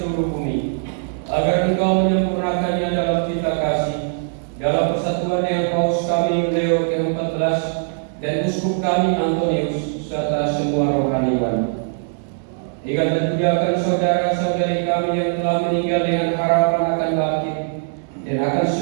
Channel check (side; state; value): left; silent; digital silence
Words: bumi, agar Engkau menyempurnakannya dalam cita kasih, dalam persatuan dengan Paus kami Leo ke-14 dan Uskup kami Antonius serta semua rohaniwan. Ingatlah juga akan saudara-saudari kami yang telah meninggal dengan harapan akan bangkit, dan akan